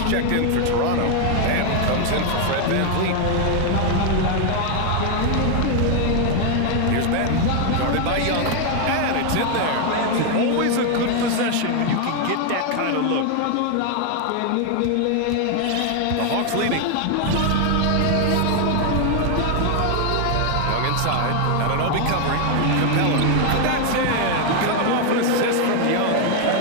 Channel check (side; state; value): both; different; correlation 0.00